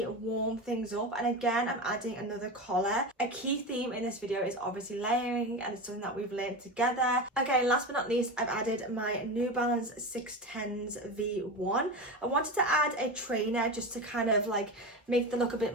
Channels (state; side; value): normal; both; correlation 0.23